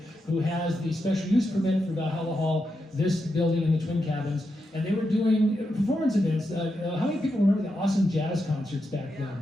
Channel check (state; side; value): normal; both; correlation 0.86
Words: who has the special use permit for Valhalla Hall, this building and the twin cabins. And they were doing performance events. How many people remember the awesome jazz concerts back then?